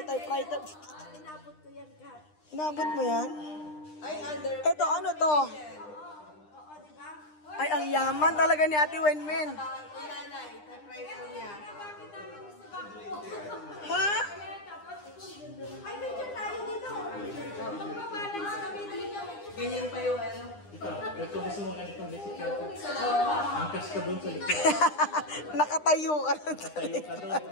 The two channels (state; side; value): late; right; 9.9 ms